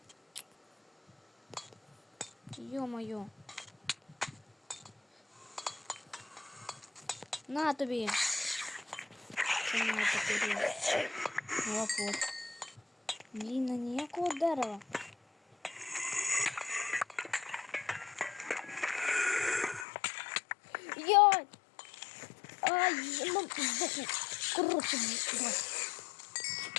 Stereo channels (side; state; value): right; drops out; at 19.9 s